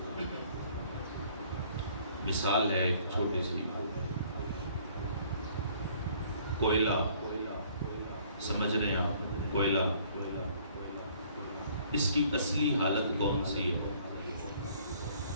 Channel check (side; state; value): both; inverted; correlation -0.59